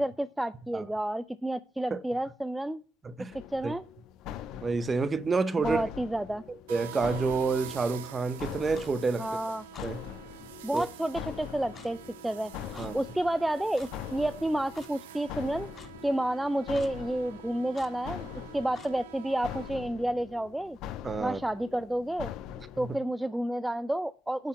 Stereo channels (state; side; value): normal; both; correlation 0.90